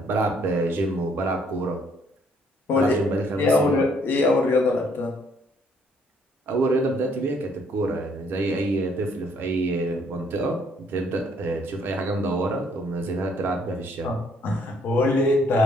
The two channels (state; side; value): normal; both; correlation 0.65